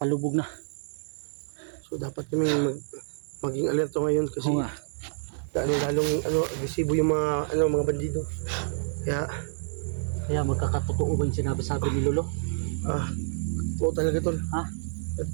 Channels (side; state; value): left; silent; digital silence